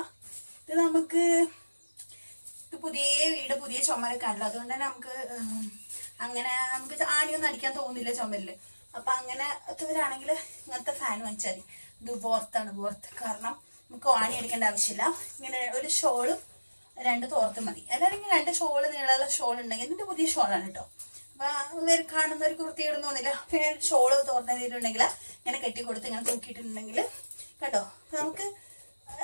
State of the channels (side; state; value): both; inverted; correlation -1.00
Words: ഇത് നമുക്ക് പുതിയ വീട് പുതിയ ചുമരൊക്കെ ആണല്ലോ, അതുകൊണ്ട് തന്നെ നമുക്ക് ആണിയൊന്നും അടിക്കാൻ തോന്നില്ല ചുമരില്. അപ്പൊ അങ്ങനത്തവരാണെങ്കിൽ ഇങ്ങനത്തെ ഫാൻ വാങ്ങിച്ചാൽ മതി. ഇത് വോർത്താണ്. കാരണം നമുക്ക് ആണി അടിക്കേണ്ട ആവശ്യമില്ല. ഇങ്ങനെ ഒരു ഷോളും 2 തോർത്തും മതി. അല്ലെങ്കിൽ 2 ഷോള് നീളമുള്ള ഷോൾ ഉണ്ടെങ്കിൽ ഇതിന്റെ പുതിയ ഷോളാണ് കേട്ടോ. അപ്പൊ കാണുന്നവർക്ക് വൃത്തിയിടുന്ന തോന്നില്ല. പിന്നെ ഷോള് തോർത്തിട്ടുണ്ടെങ്കിൽ ഇങ്ങനെ കെട്ടിക്കൊടുത്ത് ഇങ്ങനെ തൂക്കിയിട്ടുണ്ടെങ്കിൽ കേട്ടോ നമുക്ക്